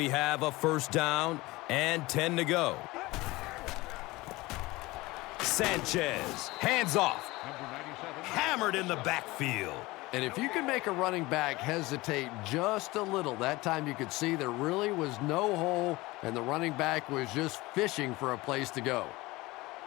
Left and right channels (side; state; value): right; quieter; 20.8 dB